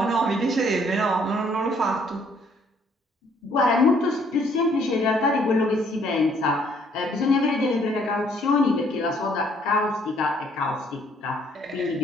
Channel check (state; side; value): normal; both; correlation 0.64